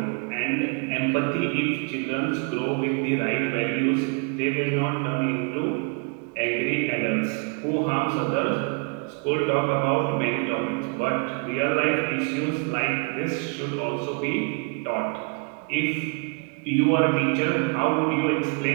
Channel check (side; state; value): left; quieter; 35.0 dB